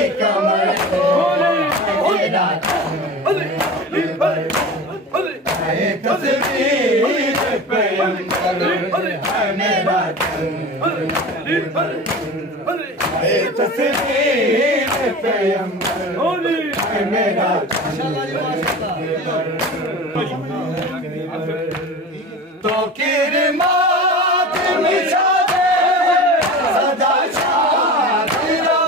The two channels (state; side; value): normal; both; correlation 0.33